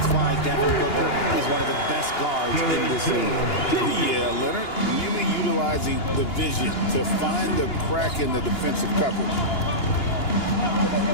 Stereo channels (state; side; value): late; right; 2.9 ms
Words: why Devin Booker is one of the best guards in this league. Yeah, Leonard really utilizing the vision to find the crack in the defensive coverage.